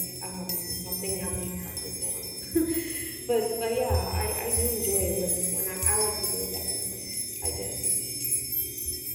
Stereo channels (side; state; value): both; identical; correlation 1.00